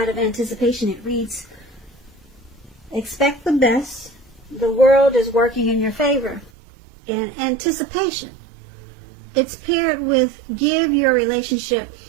of anticipation, it reads, expect the best. The world is working in your favor. In anticipation, it's paired with give your relationship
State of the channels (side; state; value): left; drops out; at 6.5 s